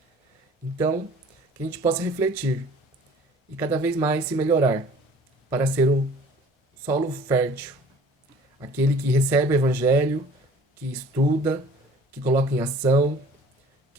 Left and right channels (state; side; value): normal; both; correlation 0.49